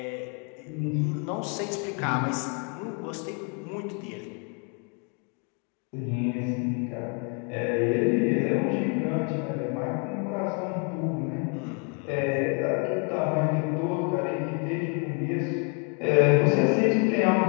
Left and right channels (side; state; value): right; quieter; 36.8 dB